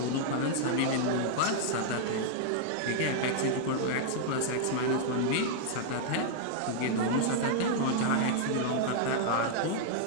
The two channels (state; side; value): different; both; correlation -0.01